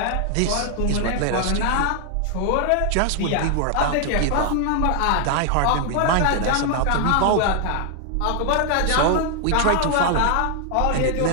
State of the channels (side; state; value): both; different; correlation 0.00